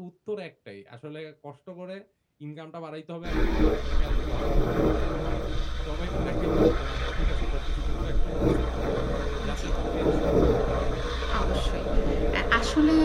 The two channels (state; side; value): identical; both; correlation 1.00